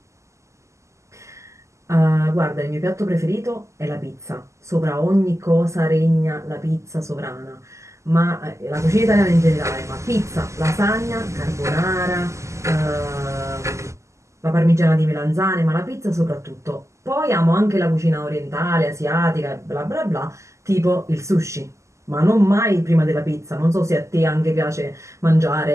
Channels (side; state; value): left; late; 0.14 ms